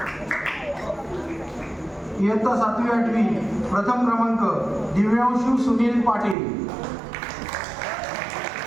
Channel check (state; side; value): drops out; left; at 6.4 s